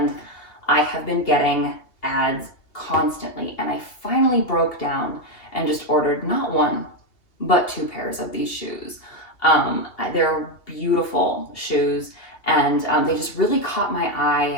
I have been getting ads constantly, and I finally broke down and just ordered not one, but 2 pairs of these shoes. They're beautiful shoes, and they just really caught my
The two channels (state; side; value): late; right; 2.8 ms